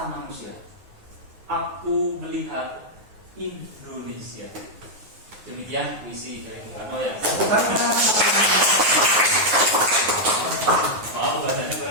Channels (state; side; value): late; left; 9.5 ms